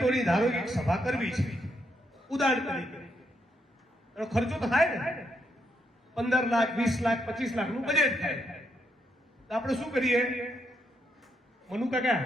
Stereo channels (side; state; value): both; normal; correlation 0.78